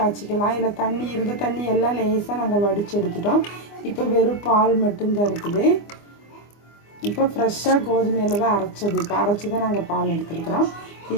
இதில் தண்ணி இருந்த தண்ணி எல்லாம் லேசாக நாங்கள் வடித்து எடுத்துட்டோம். இப்போ வெறும் பால் மட்டும்தான் இருக்குது. இப்போ ஃப்ரெஷ்ஷாக கோதுமையில் தான் அரைச்சது. இப்போ அரைச்சி தான் நாங்கள் பால் எடுத்துருக்குறோம்.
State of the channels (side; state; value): right; late; 24 ms